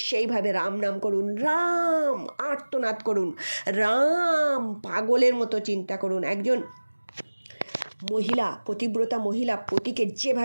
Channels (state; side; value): inverted; both; correlation -1.00